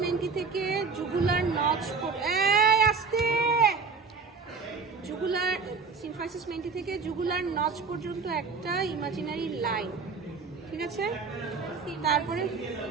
menti থেকে জুগুলার নচ, আসতে জুগুলার সিম্ফাইসিস মেন্টি থেকে জুগুলার নচ পর্যন্ত একটা ইমাজিনারি লাইন, ঠিক আছে। তারপরে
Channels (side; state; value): left; quieter; 4.9 dB